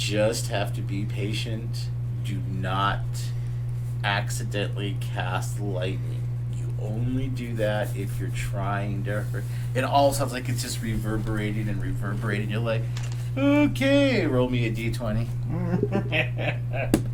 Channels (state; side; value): identical; both; correlation 1.00